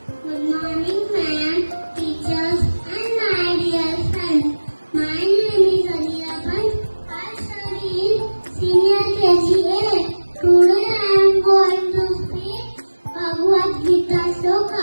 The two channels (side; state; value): both; inverted; correlation -1.00